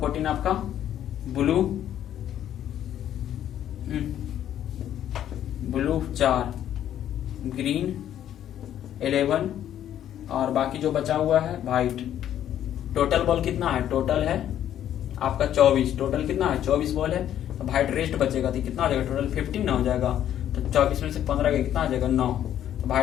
14 आपका ब्लू 4 ग्रीन 11 और बाकी जो बचा हुआ है व्हाइट। टोटल बॉल कितना है, टोटल है आपका 24। टोटल कितना है 24 बॉल है, तो व्हाइट रेस्ट बचेगा तो कितना हो जाएगा टोटल 15 ना हो जाएगा, तो 24 में से 15 का कितना आ जाएगा 9। तो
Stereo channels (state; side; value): quieter; right; 11.0 dB